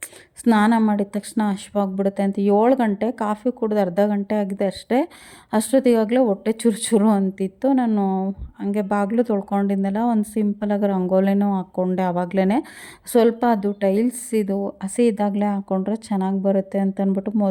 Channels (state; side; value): identical; both; correlation 1.00